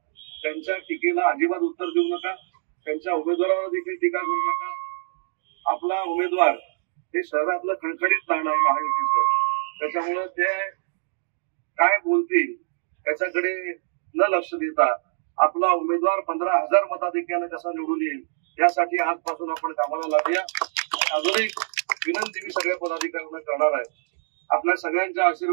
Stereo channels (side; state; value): left; silent; digital silence